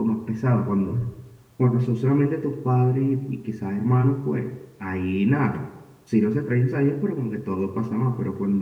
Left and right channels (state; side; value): identical; both; correlation 1.00